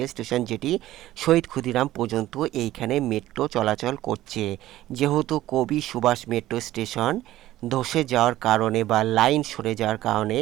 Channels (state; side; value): quieter; left; 14.8 dB